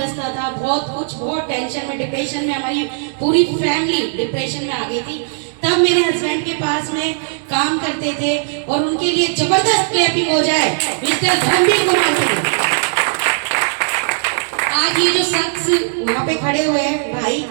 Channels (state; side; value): silent; left; digital silence